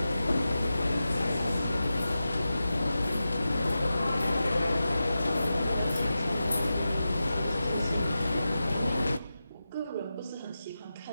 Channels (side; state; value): both; inverted; correlation -0.92